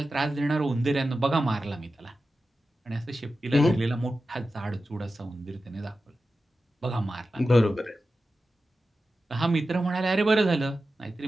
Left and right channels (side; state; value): both; normal; correlation 0.93